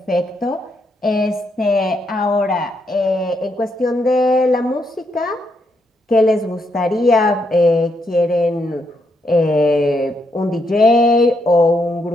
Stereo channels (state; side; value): normal; both; correlation 0.78